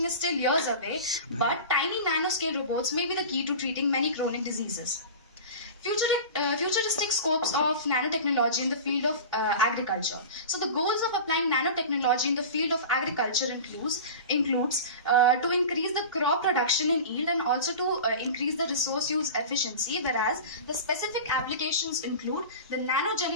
is still years away, but tiny nanoscale robots may be the key to treating many chronic diseases. Futuristic scopes of nanotechnology in the field of agriculture. So the goals of applying nanotechnology in the field of agriculture includes to increase the crop production in yield and also to increase the resource use efficiency, whereas the specific applications include the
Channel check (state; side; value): inverted; both; correlation -0.33